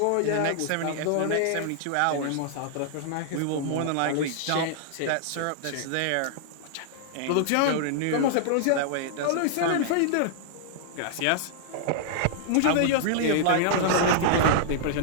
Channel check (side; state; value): both; different; correlation -0.01